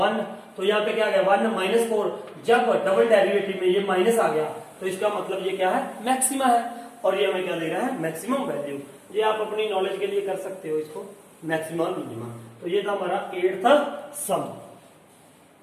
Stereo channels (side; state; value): both; identical; correlation 1.00